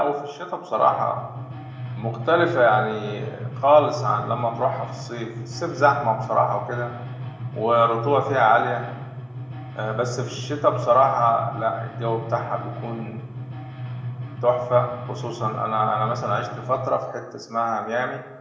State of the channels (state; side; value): identical; both; correlation 1.00